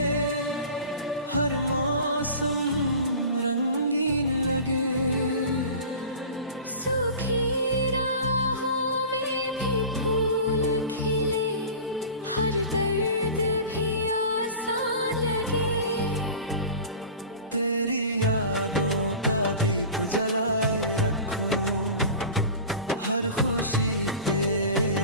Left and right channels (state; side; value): inverted; both; correlation -0.37